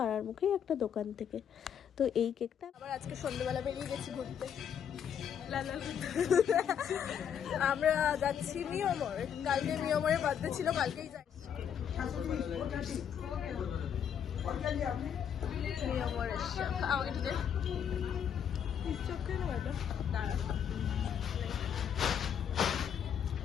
মুখেই একটা দোকান থেকে। তো এই কেকটা আবার আজকে সন্ধ্যেবেলা বেরিয়ে গেছি ঘুরতে। আমরা যাচ্ছি নিয়মরে, কালকে নিয়মরে বার্থডে ছিল, কালকেই যাচ্ছি নিয়মরে। আমাকে একটু দে,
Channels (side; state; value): right; quieter; 8.4 dB